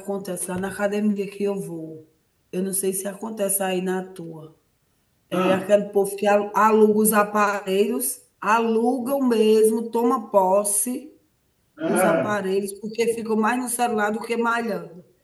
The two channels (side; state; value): both; identical; correlation 1.00